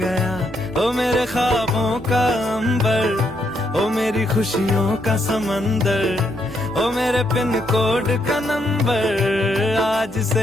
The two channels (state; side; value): normal; both; correlation 0.76